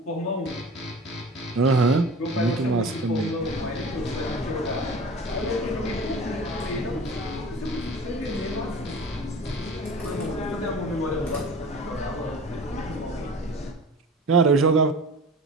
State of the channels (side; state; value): both; normal; correlation 0.39